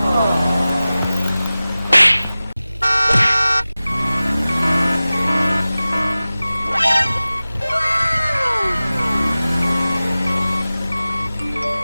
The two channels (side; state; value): both; inverted; correlation -0.97